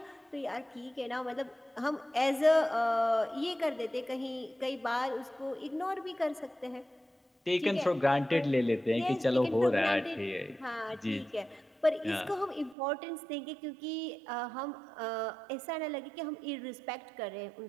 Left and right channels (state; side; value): drops out; left; at 12.8 s